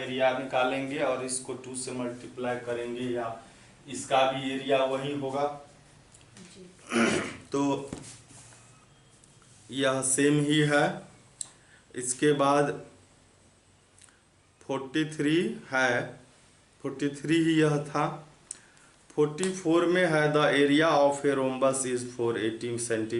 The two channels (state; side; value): identical; both; correlation 1.00